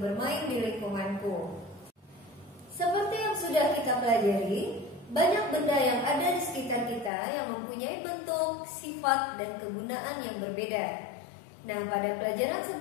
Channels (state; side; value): drops out; right; at 7.1 s